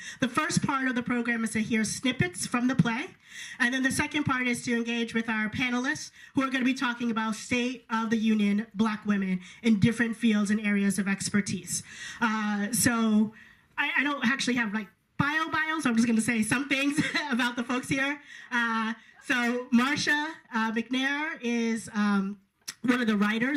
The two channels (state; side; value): identical; both; correlation 1.00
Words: The first part of the program is to hear snippets from the play, and then the second part is to engage with our panelists who are going to be talking about State of the Union Black women in different fields and areas of expertise. So I don't actually have like bios, so I'm just going to say some things about the folks here. So Marsha McNair is one of the